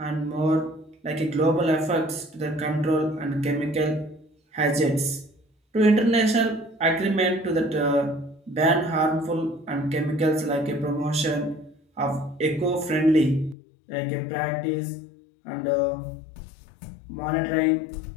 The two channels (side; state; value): right; drops out; at 13.6 s